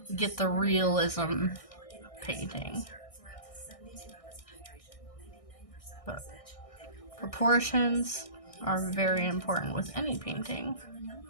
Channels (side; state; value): right; late; 1.6 ms